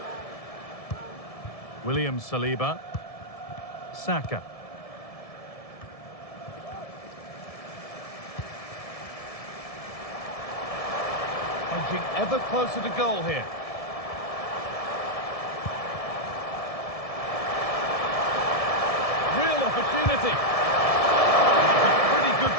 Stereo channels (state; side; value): late; right; 1.7 ms